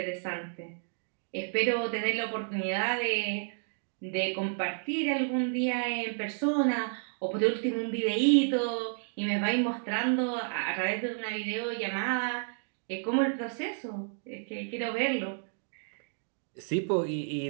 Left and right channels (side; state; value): left; silent; digital silence